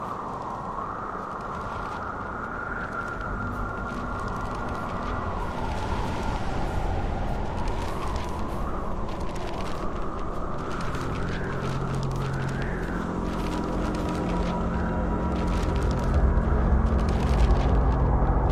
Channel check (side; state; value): both; identical; correlation 1.00